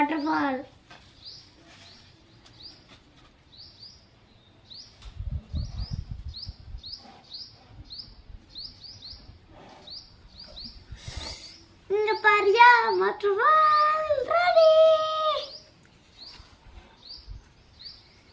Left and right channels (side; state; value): both; identical; correlation 1.00